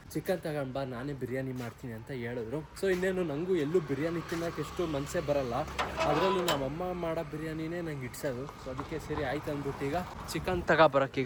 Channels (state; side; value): identical; both; correlation 1.00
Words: ಚಿಕನ್ ತಗೊಂಡು ಬಾ, ನಾನೇ ಬಿರಿಯಾನಿ ಮಾಡ್ತೀನಿ ಅಂತ ಹೇಳಿದ್ರು. ಸೊ ಇನ್ನೇನು ನನಗೂ ಎಲ್ಲೂ ಬಿರಿಯಾನಿ ತಿನ್ನೋಕೆ ಎಷ್ಟು ಮನಸ್ಸೇ ಬರಲ್ಲ, ಅದರಲ್ಲೂ ನಮ್ಮಮ್ಮ ಮಾಡೋ ಬಿರಿಯಾನಿನೇ ನಂಗೆ ಇಡ್ಸೋದು. ಸೊ ಅದಕ್ಕೆ ಸರಿ ಆಯ್ತು ಅಂದ್ಬಿಟ್ಟು ಈಗ ಚಿಕನ್